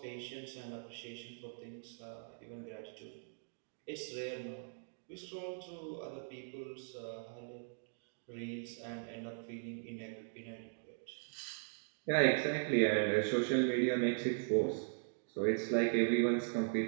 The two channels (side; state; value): left; silent; digital silence